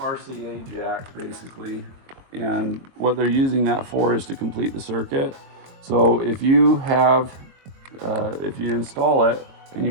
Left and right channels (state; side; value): late; left; 22 ms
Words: RCA jack basically, and what they're using that for is to complete the circuit. So if you install it and